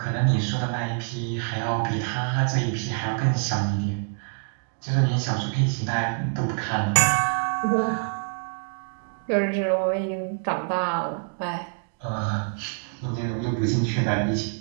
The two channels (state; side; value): quieter; left; 37.5 dB